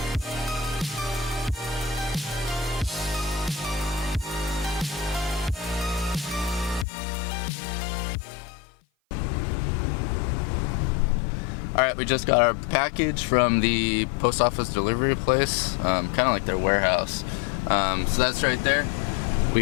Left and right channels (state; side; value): drops out; right; at 6.9 s